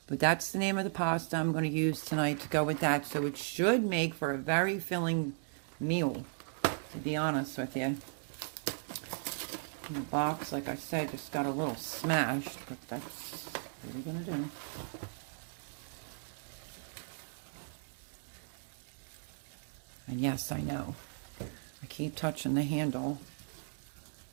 But that's the name of the pasta I'm going to use tonight to go with that. So it should make for a very filling meal, to be honest with you. The box, like I said, just got a little smashed, but that's what we're going to do. And yes, I know. I keep touching the handle.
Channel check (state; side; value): silent; left; digital silence